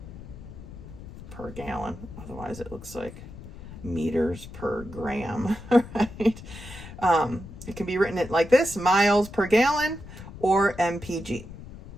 per gallon. Otherwise it looks like meters per gram, right? It can be written like this, miles per gallon or MPG,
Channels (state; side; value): noise; left; rumble, 14 dB below the sound